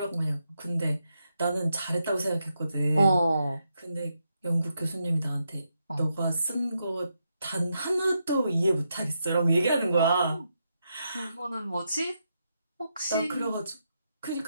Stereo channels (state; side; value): inverted; both; correlation -0.83